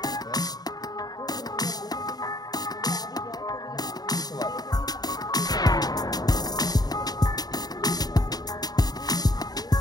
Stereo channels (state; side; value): late; right; 0.19 ms